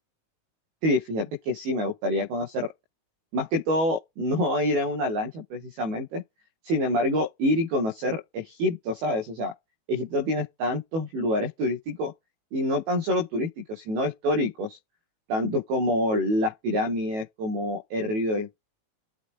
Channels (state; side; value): late; left; 19 ms